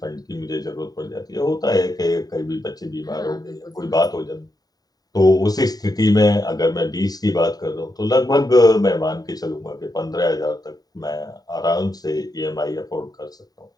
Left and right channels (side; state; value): right; late; 0.18 ms